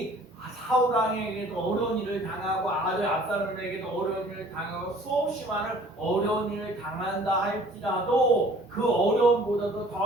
사울 왕에게도 어려운 일을 당하고 아들 압살롬에게도 어려운 일을 당하고 수없이 많은 어려운 일을 당한다 할지라도 그 어려움보다도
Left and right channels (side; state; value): both; normal; correlation 0.52